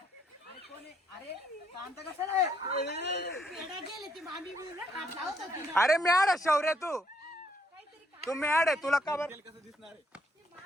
अरे म्याड आहे शौर्य तू. तू म्याड आहे तुला का बरं.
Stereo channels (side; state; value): both; normal; correlation 0.72